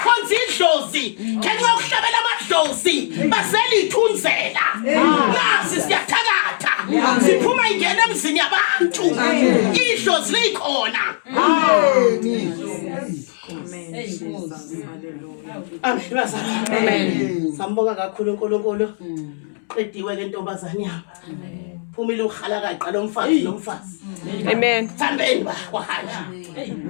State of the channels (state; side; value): silent; right; 66 dB below the other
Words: idlozi, ngeke ukuhlabela amadlozi, baselithunzela. Nasi siyathakatha. Siphuma ingene emzini yabantu. Idlozi likhona. Amen bazalwane. Amen. Sambonga kakhulu uNkulunkulu. Qediwe ke ntombazane yami. Amen. Phumile ukhala kaqala umfazi nomfazi. Amen. Thambeni bahanja.